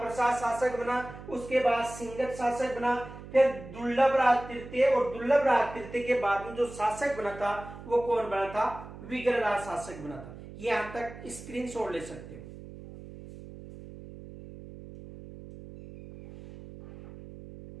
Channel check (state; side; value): noise; right; hum, 14 dB below the sound